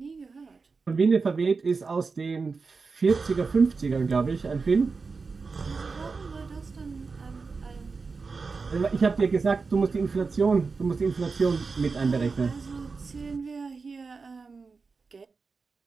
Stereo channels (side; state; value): left; quieter; 4.6 dB